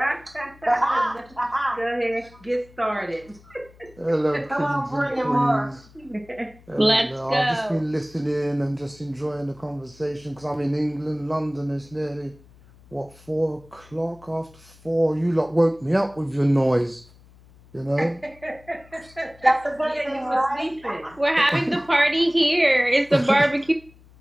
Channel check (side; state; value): left; noise; hum, 25 dB below the sound